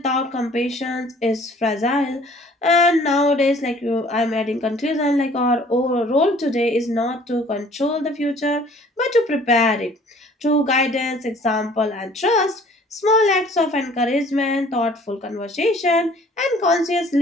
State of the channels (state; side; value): normal; both; correlation 0.54